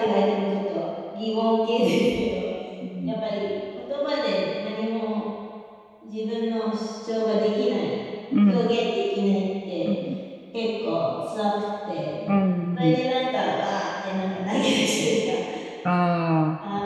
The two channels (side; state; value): both; identical; correlation 1.00